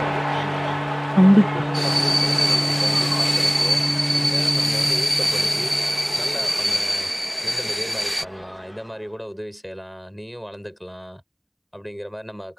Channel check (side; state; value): both; identical; correlation 1.00